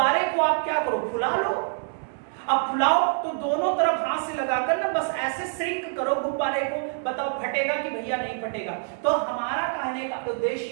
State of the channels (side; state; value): left; silent; digital silence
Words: को आप क्या करो, फुला लो, अब फुलाओ तो दोनों तरफ हाथ से लगाकर ना बस ऐसे श्रिंक करो गुब्बारे को, बताओ फटेगा कि भैया नहीं फटेगा? तो हमारा कहने का